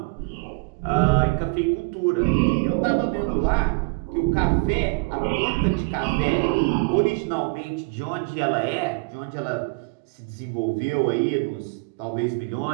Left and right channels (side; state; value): left; quieter; 30.2 dB